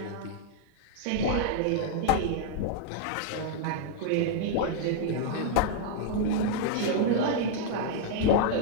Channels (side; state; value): both; different; correlation -0.01